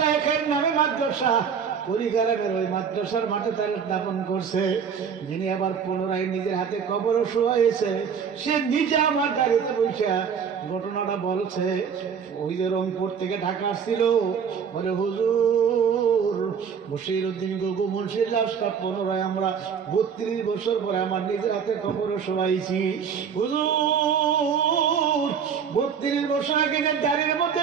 নামে মাদ্রাসা পরিকারাগার, ওই মাদ্রাসার মাঠে তার দাফন করছে। যিনি আবার পুনরায় নিজের হাতে কবরও শোয়াইছে, সে নিজে আমার গাড়িতে বসে ঘটনাটা বলছে। ওই যে রংপুর থেকে ঢাকা আসছিল, বলে হুজুর বশিরউদ্দিন গগু মুন্সির লাশটা পুনরায় আমরা 32 বছর পরে আমার নিজের হাতে কবরও শোয়াইছি। হুজুর 32 বছর আগে যে দাড়ির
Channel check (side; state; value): left; quieter; 7.0 dB